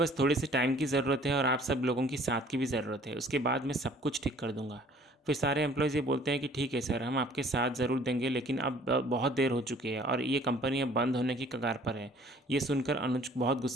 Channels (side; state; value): both; normal; correlation 0.54